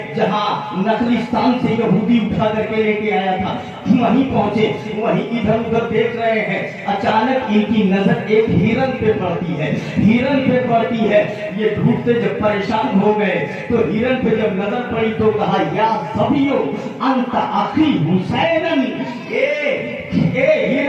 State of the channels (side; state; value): both; identical; correlation 1.00